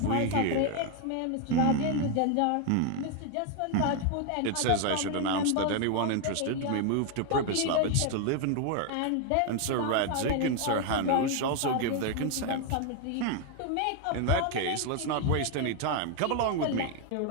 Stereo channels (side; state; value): both; different; correlation 0.01